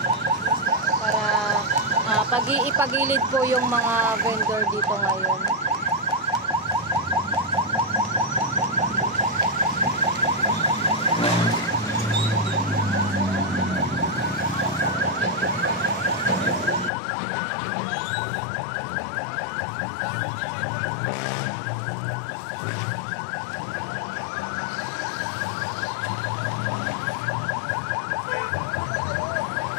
Para ipagilid po yung mga vendor dito ngayon.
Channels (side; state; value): right; drops out; at 16.9 s